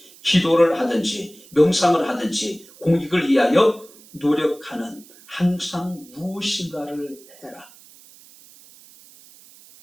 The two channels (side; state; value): right; noise; hiss, 24 dB below the sound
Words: 기도를 하든지 명상을 하든지 공익을 위하여 노력하는 항상 무엇인가를 해라.